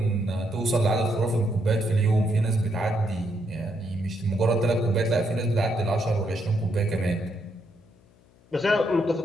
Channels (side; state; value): left; noise; hum, 30 dB below the sound